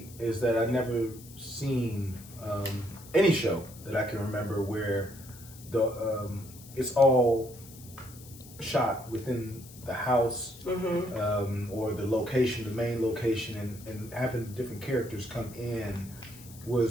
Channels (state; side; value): noise; left; hiss, 19 dB below the sound